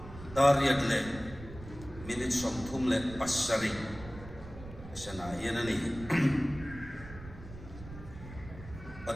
dariyag le minit somtum le pasari sana yan na ni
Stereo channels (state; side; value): noise; right; rumble, 14 dB below the sound